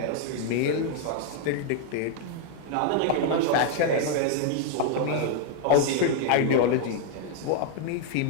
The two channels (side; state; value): both; different; correlation 0.00